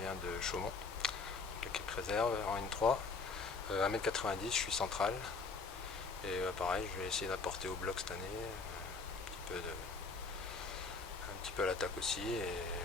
de Chaumont, l'équipe réserve en N3. 1m90, je suis central. Et pareil, je vais essayer d'apporter au bloc cette année, un petit peu à l'attaque aussi. Et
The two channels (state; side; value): quieter; right; 4.3 dB